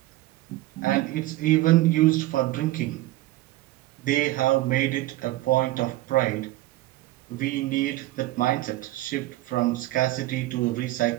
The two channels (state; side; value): quieter; left; 17.1 dB